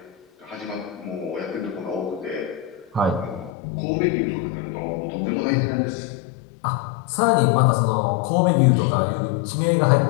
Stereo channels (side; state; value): right; drops out; at 3.5 s